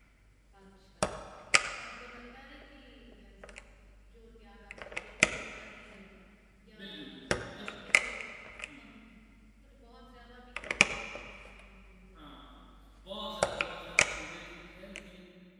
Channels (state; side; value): identical; both; correlation 1.00